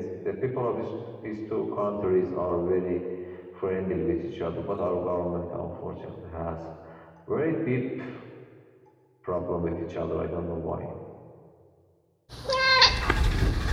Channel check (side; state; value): both; identical; correlation 1.00